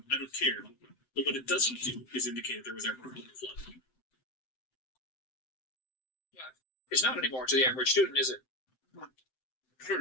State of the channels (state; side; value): late; right; 7.7 ms